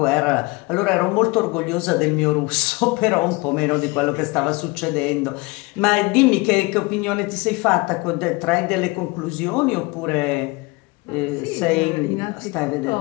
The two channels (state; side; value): quieter; right; 25.2 dB